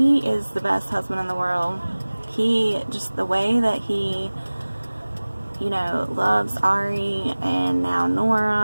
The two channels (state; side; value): inverted; both; correlation -1.00